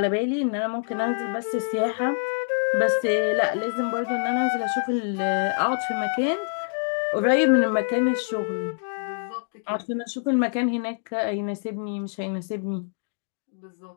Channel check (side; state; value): right; silent; digital silence